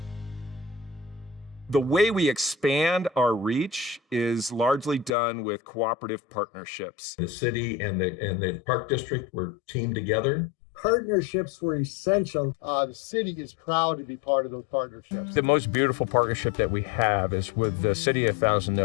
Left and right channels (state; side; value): drops out; right; at 5.1 s